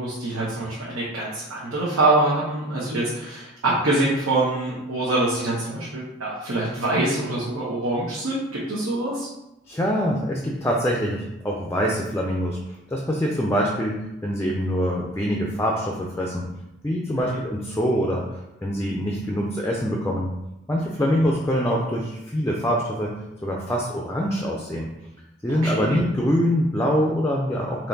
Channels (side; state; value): both; normal; correlation 0.53